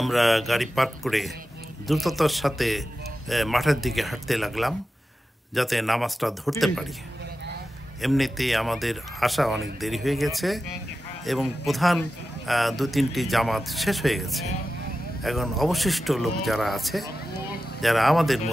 আমরা গাড়ি পার্ক করে দ্রুততার সাথে মাঠের দিকে হাঁটতে লাগলাম, যাতে নামাজটা ধরতে পারি। এমনিতেই আমাদের আসা অনেক দেরি হয়ে গেছে এবং প্রধান 2-3টি জামাত শেষ হয়ে গেছে। এখন অবশিষ্ট লোক যারা আছে, যারা আমাদের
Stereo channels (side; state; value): both; normal; correlation 0.92